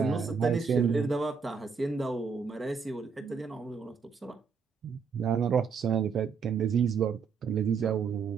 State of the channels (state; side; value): quieter; left; 5.8 dB